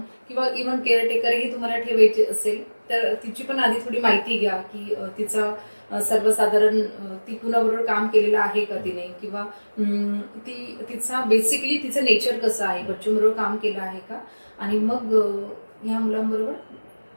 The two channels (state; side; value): inverted; both; correlation -1.00